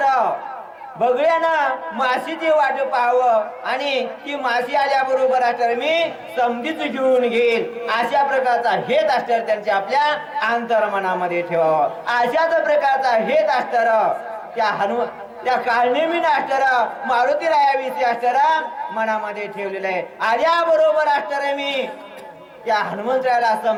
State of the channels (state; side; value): identical; both; correlation 1.00